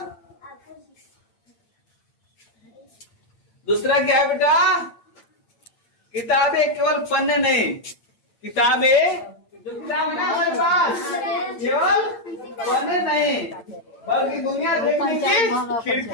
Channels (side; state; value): right; late; 8.8 ms